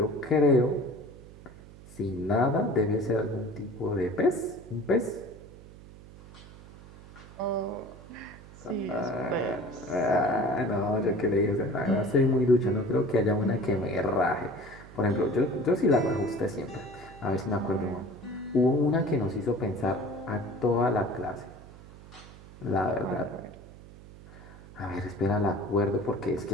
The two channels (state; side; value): noise; right; hum, 19 dB below the sound